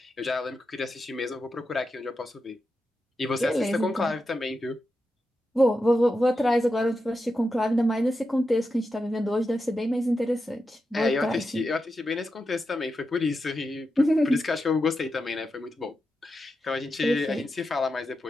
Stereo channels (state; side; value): normal; both; correlation 0.89